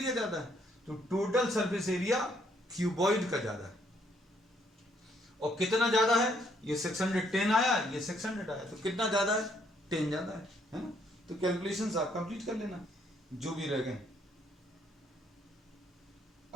ज्यादा है, तो टोटल सरफेस एरिया क्यूबॉइड का ज्यादा है। और कितना ज्यादा है, ये 610 आया, ये 600 आया, तो कितना ज्यादा है, 10 ज्यादा है ना। तो कैलकुलेशंस आप कंप्लीट कर लेना जो भी रह गए।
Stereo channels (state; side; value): normal; both; correlation 0.69